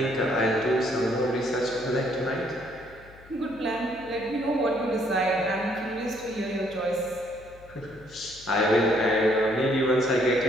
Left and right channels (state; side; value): noise; left; hum, 22 dB below the sound